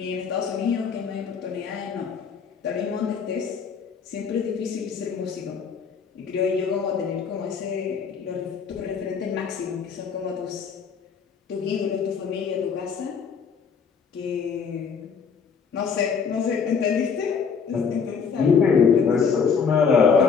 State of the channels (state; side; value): quieter; right; 6.1 dB